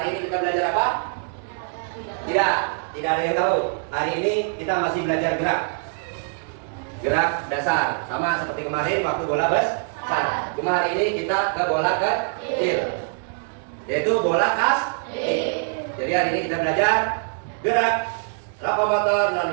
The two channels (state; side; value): silent; left; 63 dB below the other